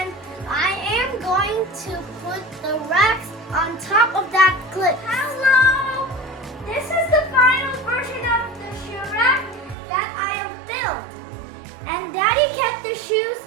I am going to put the racks on top of that clip. Hello! This is the final version of the shoe rack that I have built. And Daddy kept the shoes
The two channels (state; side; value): drops out; left; at 9.8 s